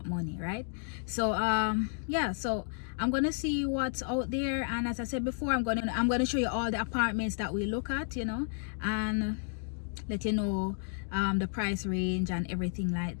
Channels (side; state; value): right; silent; digital silence